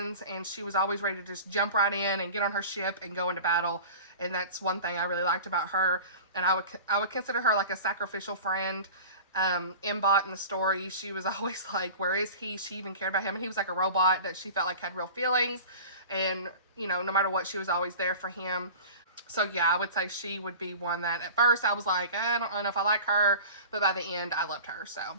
and she was always ready to just jump right in and get on her ship and go into battle, and that's one thing I really liked about her, and I would consider her like a sacrificial friend. Mbot in the story, she was always like, where is he? She even cared about him, and he was like a robot that she felt like had real feelings, and, you know, no matter what, she was always there for him. So yeah, I would say she would be one that at first I was like, I don't know if I like her, but by the end I loved her. So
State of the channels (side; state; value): both; inverted; correlation -0.38